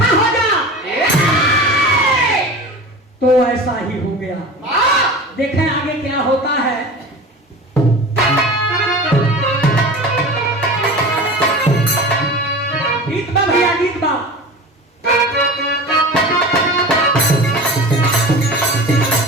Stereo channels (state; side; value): normal; both; correlation 0.35